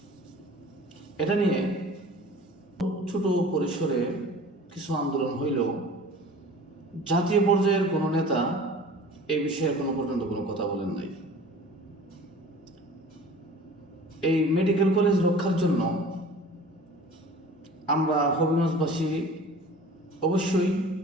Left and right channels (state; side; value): normal; both; correlation 0.43